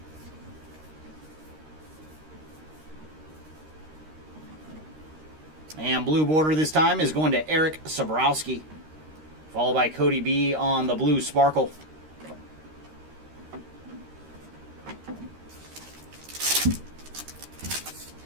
And blue border this time is going to Eric Sabrowski. Followed by Cody B on the blue sparkle.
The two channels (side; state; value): left; late; 13 ms